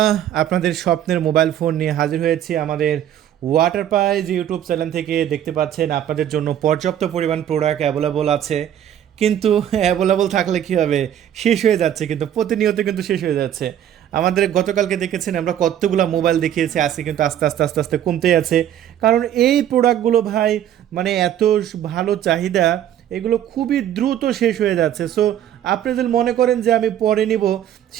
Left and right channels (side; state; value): left; quieter; 10.7 dB